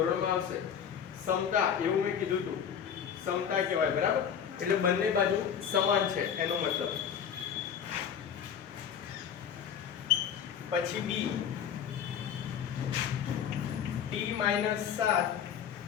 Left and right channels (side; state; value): right; quieter; 8.1 dB